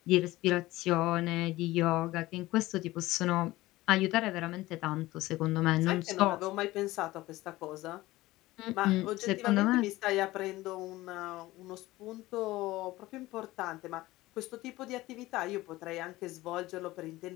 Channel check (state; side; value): quieter; right; 18.1 dB